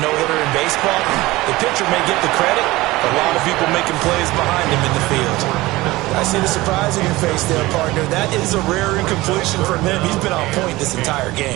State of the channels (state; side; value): quieter; left; 19.4 dB